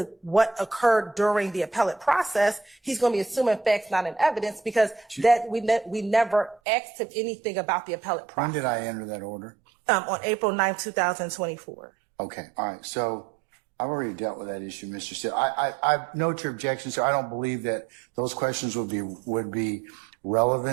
what occurred during the appellate process, he's going to be assuming facts not in evidence, because that we never asked him anything about the appellate process. When did I enter that order? On April 9, 2024. Okay, all right. So I've already dealt with that issue, Mr. Steele. I note your objection, so I don't believe that those questions would be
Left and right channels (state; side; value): drops out; left; at 6.6 s